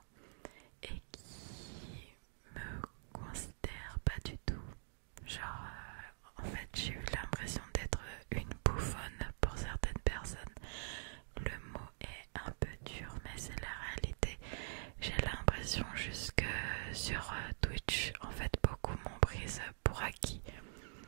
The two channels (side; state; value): left; silent; digital silence